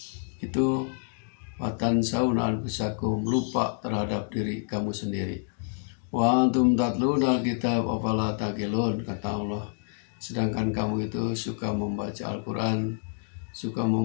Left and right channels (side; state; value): right; silent; digital silence